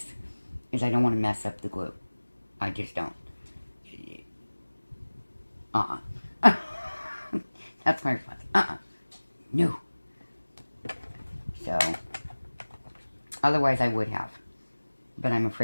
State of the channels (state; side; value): inverted; both; correlation -1.00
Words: is I don't want to mess up the glue. I just don't. That's my response. No. So, otherwise I would have. But I'm